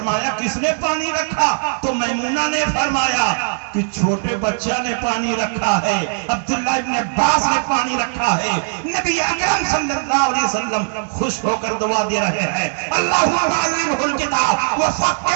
کس نے پانی رکھا؟ تو میمونہ نے فرمایا کہ چھوٹے بچہ نے پانی رکھا ہے، عبداللہ ابن عباس نے پانی رکھا ہے۔ نبی اکرم صلی اللہ علیہ وسلم خوش ہو کر دعا دے رہے ہیں، اللہم علمہ الکتاب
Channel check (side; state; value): left; silent; 67 dB below the other